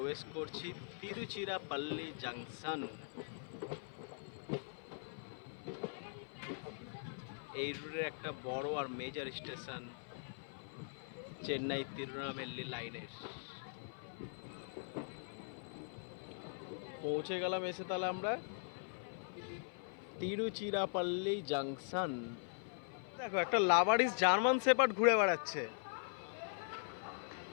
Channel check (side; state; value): right; silent; 50 dB below the other